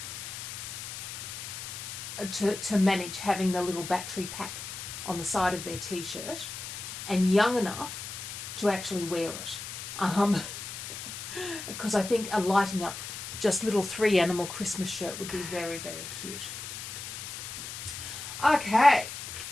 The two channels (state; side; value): noise; left; hiss, 8 dB below the sound